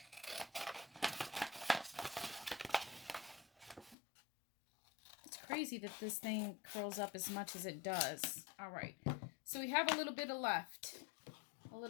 Crazy that this thing curls up as much as it does. All right, so we have a little bit left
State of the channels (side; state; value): right; drops out; at 4.0 s